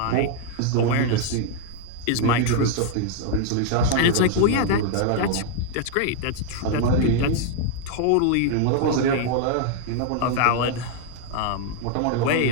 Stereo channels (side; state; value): both; different; correlation 0.00